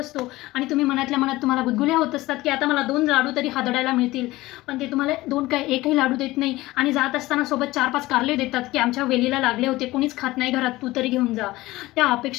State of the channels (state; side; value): quieter; right; 18.5 dB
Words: आणि तुम्ही मनातल्या मनात तुम्हाला गुदगुल्या होत असतात की आता मला 2 लाडू तरी हादडायला मिळतील, पण ते तुम्हाला 2 काय 1ही लाडू देत नाही आणि जात असताना सोबत 4-5 कारले देतात की आमच्या वेलीला लागले होते, कोणीच खात नाही घरात, तू तरी घेऊन जा. त्या